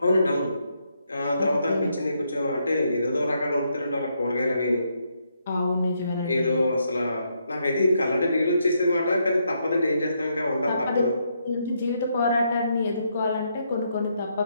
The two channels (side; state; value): both; inverted; correlation -0.77